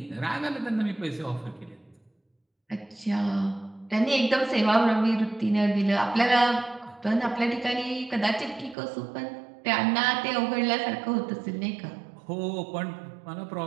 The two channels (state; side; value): drops out; left; at 8.8 s